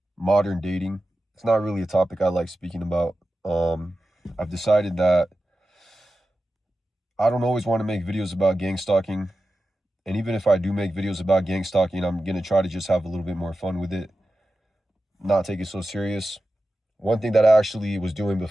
modern dating. It's not really a topic I like speaking about. I've decided that I don't always want to make videos about gang stalking, and even if I do make videos about gang stalking, I'm gonna try to just have a little bit more fun with it, not take it so serious. One thing that I actually was doing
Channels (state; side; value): normal; both; correlation 0.93